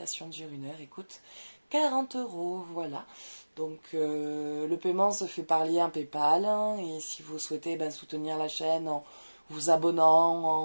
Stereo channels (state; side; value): inverted; both; correlation -1.00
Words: dure 1 heure, écoute, 40 €, voilà. Donc le paiement se fait par lien PayPal. Et si vous souhaitez soutenir la chaîne en vous abonnant,